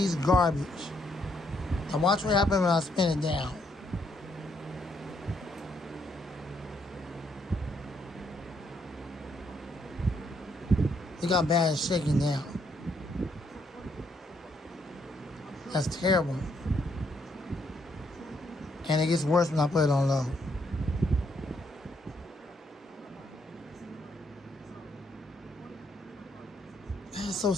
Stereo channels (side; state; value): both; normal; correlation 0.73